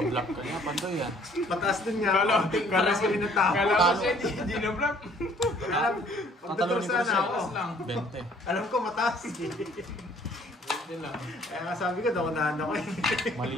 ka niya, Pandoy yan. Mataas din nga. Kala Mataas ko rin ang tao. Kala ko siya hindi na block. Alam, magdodor Tatalunin ko sana siya. ako. lang. 20. Alam ko mataas eh. Hindi lang. Kaya nga sabi ko, naunahan ako eh. Mali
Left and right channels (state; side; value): normal; both; correlation 0.58